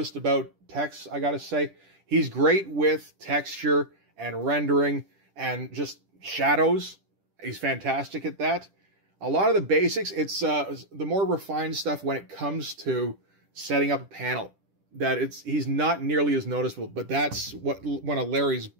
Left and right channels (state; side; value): late; left; 10 ms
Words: about Tex, I gotta say. He's great with texture and rendering and just shadows. He's fantastic at that. A lot of the basics, it's the more refined stuff when it comes to setting up a panel. He's not nearly as noticeable, but that's one of Larry's